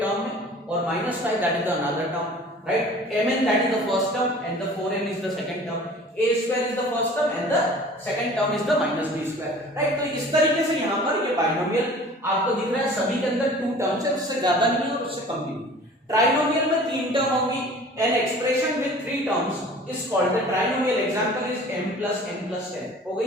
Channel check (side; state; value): both; normal; correlation 0.46